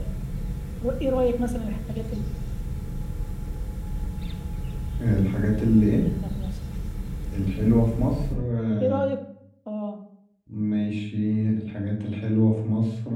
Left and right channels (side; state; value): both; identical; correlation 1.00